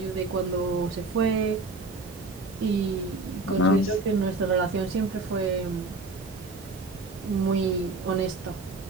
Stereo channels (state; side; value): quieter; left; 3.3 dB